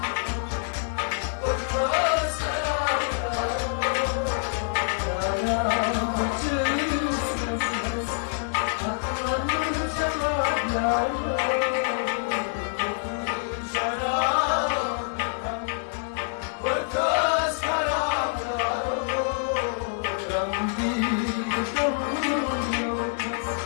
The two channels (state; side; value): silent; right; digital silence